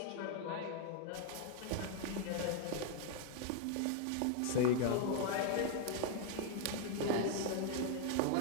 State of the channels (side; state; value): both; different; correlation 0.00